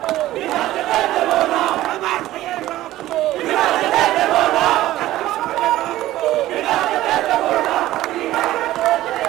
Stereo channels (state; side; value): quieter; left; 15.2 dB